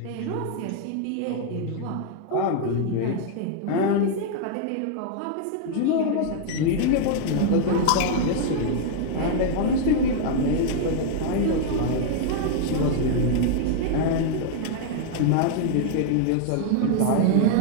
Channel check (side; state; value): both; different; correlation 0.00